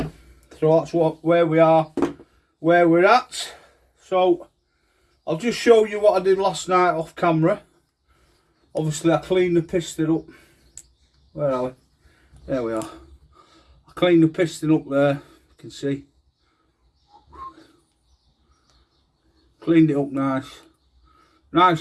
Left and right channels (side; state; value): both; identical; correlation 1.00